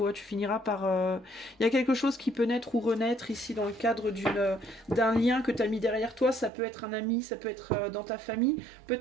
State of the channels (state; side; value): drops out; left; at 6.5 s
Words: tu finiras par... Il y a quelque chose qui peut naître ou renaître ici dans le cadre d'un lien que tu as mis derrière toi. Ça peut être un ami, ça peut être dans ta famille,